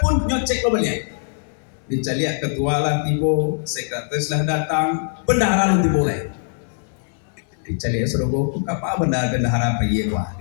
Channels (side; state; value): right; silent; digital silence